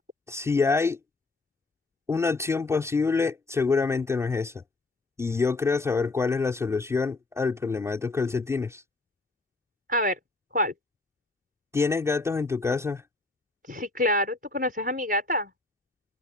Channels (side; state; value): right; quieter; 3.3 dB